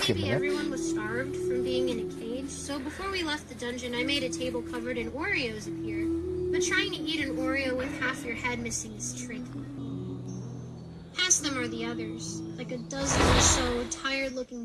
Maybe minutes. everyone was starved from being in a cage, so before we left the dungeon, I made a table covered in Oreos appear. But trying to eat an Oreo with half your head missing is tricky. Past them are the others, like a dozen or so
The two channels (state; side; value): identical; both; correlation 1.00